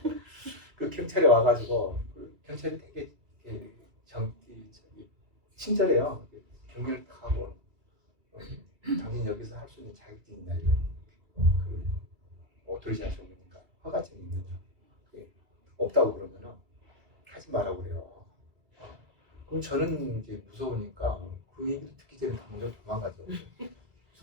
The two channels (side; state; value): left; late; 2.4 ms